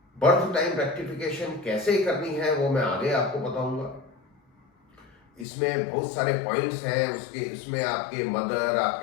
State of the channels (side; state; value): right; drops out; at 5.5 s